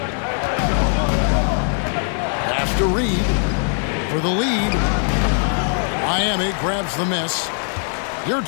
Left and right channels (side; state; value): right; silent; 60 dB below the other